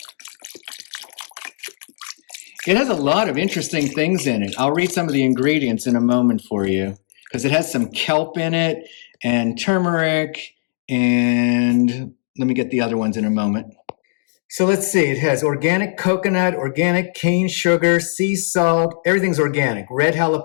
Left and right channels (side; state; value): right; silent; digital silence